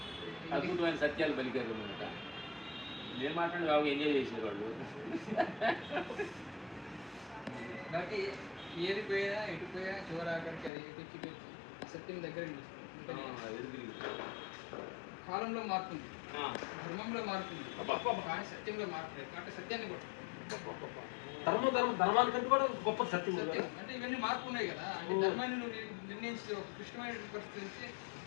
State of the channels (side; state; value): right; drops out; at 10.7 s